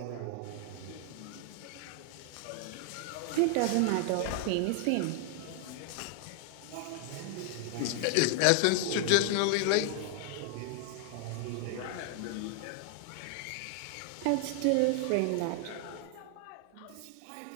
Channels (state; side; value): different; both; correlation 0.00